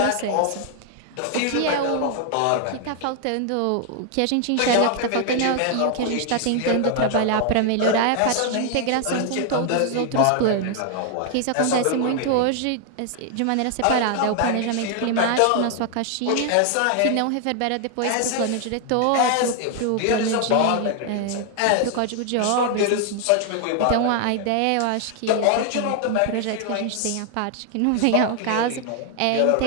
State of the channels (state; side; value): different; both; correlation 0.00